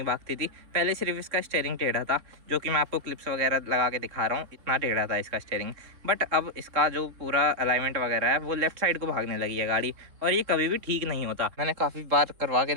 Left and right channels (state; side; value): late; left; 3.7 ms